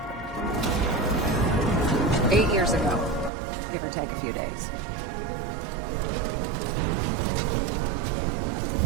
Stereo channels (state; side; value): drops out; left; at 3.3 s